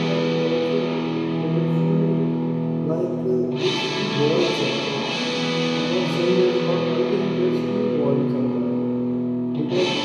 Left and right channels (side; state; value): both; identical; correlation 1.00